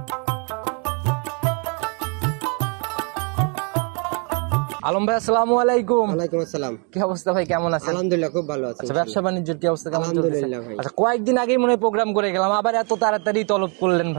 আলম ভাই, আসসালামু আলাইকুম। ওয়ালাইকুম আসসালাম। কি অবস্থা ভাই, কেমন আছেন? আলহামদুলিল্লাহ, খুব ভালো আছি। আচ্ছা, ব্যবসা বাণিজ্যের কি অবস্থা, কেমন চলছে? আলহামদুলিল্লাহ ভাই। আচ্ছা, কয়েকদিন আগেই মনে হয় প্রোগ্রাম করে গেলাম, আবার এত তাড়াতাড়ি তলব করলেন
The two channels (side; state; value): left; quieter; 35.6 dB